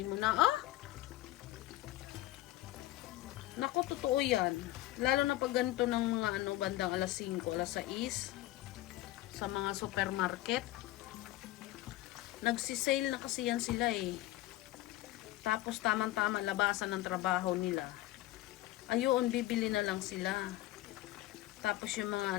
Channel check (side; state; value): right; quieter; 16.2 dB